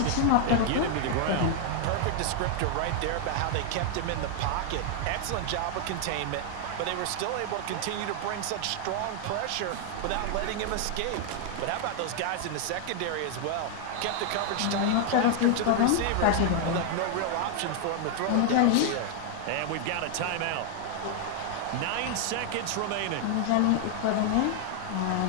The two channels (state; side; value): different; both; correlation 0.00